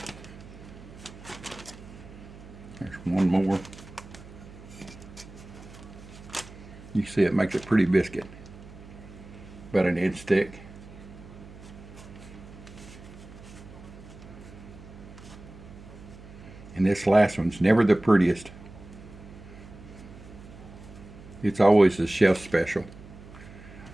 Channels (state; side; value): noise; right; hum, 17 dB below the sound